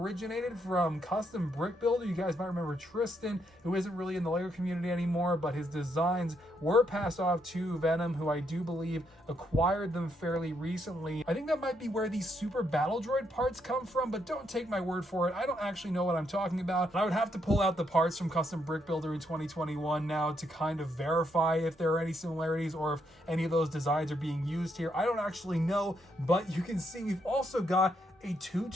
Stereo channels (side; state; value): both; normal; correlation 0.76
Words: from Custom Brick Builder. You guys might remember Tristan, who isn't really in the Lego community anymore, but his designs were passed off to Venom, who I do believe acquired them fairly recently. I think that might be where these Super Battle Droid parts come from, but don't take my word for it. I don't actually know what I'm talking about. I would have to pull out the parts from Custom Brick Builder in 2021 now to kind of verify if there are any similarities or if any of those designs are being used here. I don't actually know, but you can see we've also got a Two